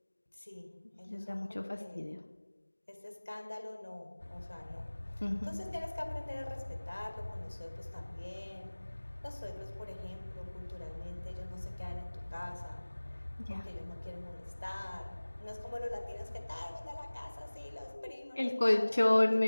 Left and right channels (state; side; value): inverted; both; correlation -1.00